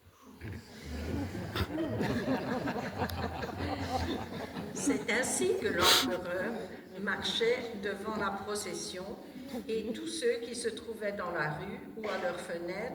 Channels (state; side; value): identical; both; correlation 1.00